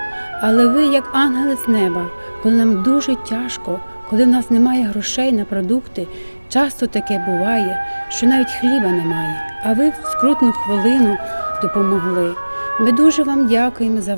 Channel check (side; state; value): both; inverted; correlation -1.00